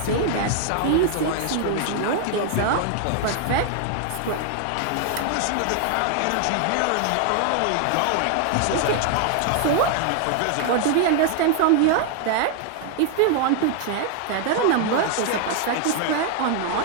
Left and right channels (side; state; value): both; different; correlation 0.00